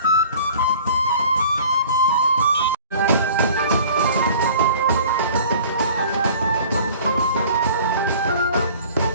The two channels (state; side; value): inverted; both; correlation -0.47